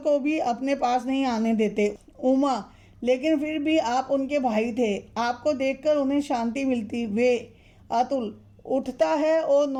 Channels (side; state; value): both; identical; correlation 1.00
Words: भी अपने पास नहीं आने देते। उमा, लेकिन फिर भी आप उनके भाई थे, आपको देखकर उन्हें शांति मिलती। वे। अतुल उठता है और